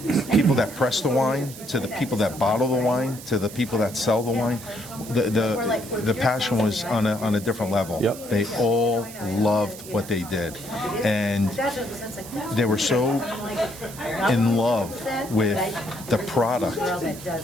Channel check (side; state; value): right; noise; hiss, 15 dB below the sound